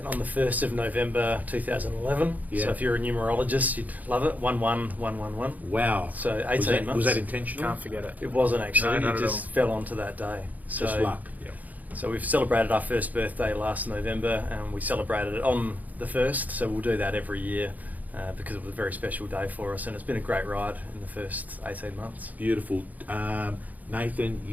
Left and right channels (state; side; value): late; left; 0.079 ms